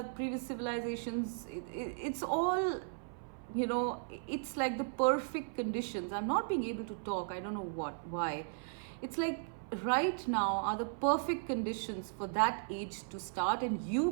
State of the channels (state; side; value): silent; left; 54 dB below the other